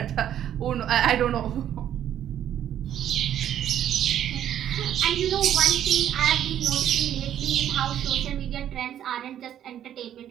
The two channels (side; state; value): left; quieter; 10.7 dB